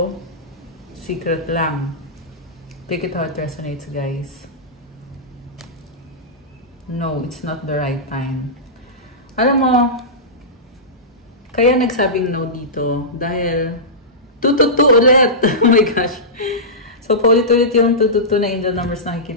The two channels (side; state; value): both; normal; correlation -0.17